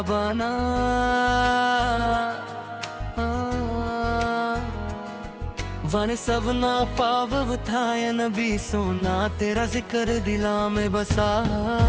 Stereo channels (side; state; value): both; identical; correlation 1.00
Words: बना। वन सबना पाव था या नबी सोना तेरा जिक्र दिला में बसा।